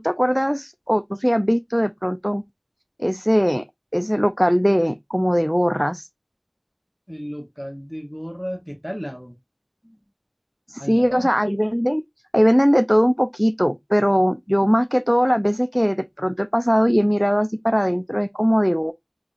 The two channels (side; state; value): both; identical; correlation 1.00